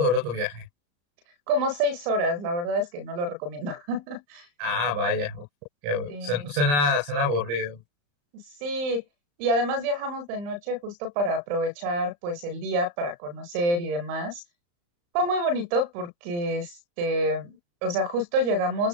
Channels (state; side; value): late; left; 35 ms